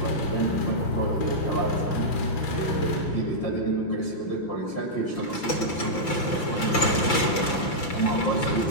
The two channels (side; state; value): right; late; 5.9 ms